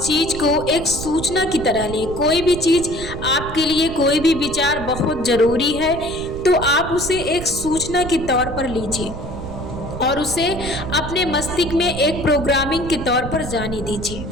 चीज को एक सूचना की तरह लें। कोई भी चीज आपके लिए, कोई भी विचार बहुत जरूरी है तो आप उसे एक सूचना के तौर पर लीजिए और उसे अपने मस्तिष्क में एक प्रोग्रामिंग के तौर पर जाने दीजिए।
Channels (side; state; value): right; noise; rumble, 10 dB below the sound